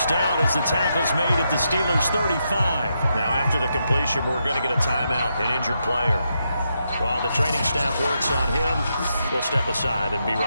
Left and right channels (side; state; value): both; inverted; correlation -0.82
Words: down as the tackle's made at the Steelers' 35. Now after the completion, we're going to get a timeout, an injured player. While the training staff works on him, we'll step aside and be